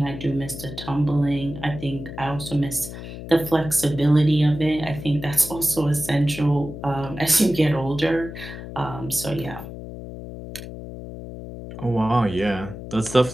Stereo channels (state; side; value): noise; left; hum, 11 dB below the sound